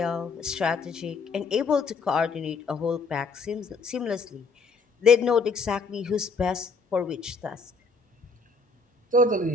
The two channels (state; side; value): quieter; right; 4.3 dB